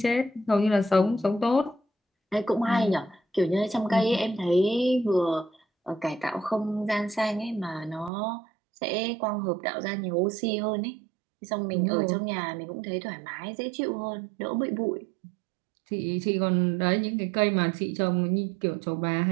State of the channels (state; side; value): drops out; left; at 8.1 s